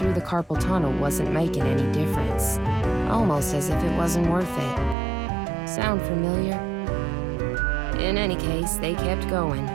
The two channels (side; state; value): left; drops out; at 5.0 s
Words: the carpal tunnel wasn't making any difference. Almost as if it wasn't worth it. Sound familiar? In any case, they kept going,